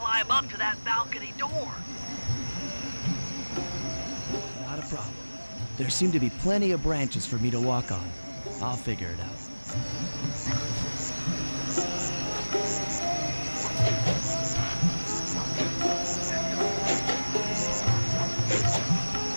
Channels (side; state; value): both; inverted; correlation -1.00